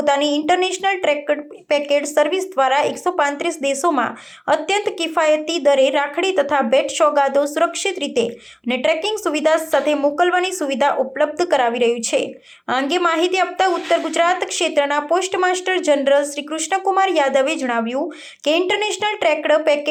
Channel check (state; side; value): identical; both; correlation 1.00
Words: ઇન્ટરનેશનલ ટ્રેક્ડ પેકેટ સર્વિસ દ્વારા 135 દેશોમાં અત્યંત કિફાયતી દરે રાખડી તથા ભેટ સોગાદો સુરક્ષિત રીતે અને ટ્રેકિંગ સુવિધા સાથે મોકલવાની સુવિધા ઉપલબ્ધ કરાવી રહ્યું છે। આ અંગે માહિતી આપતા ઉત્તર ગુજરાત ક્ષેત્રના post master general Shri Krishnakumar યાદવે જણાવ્યું કે ઇન્ટરનેશનલ ટ્રેક્ડ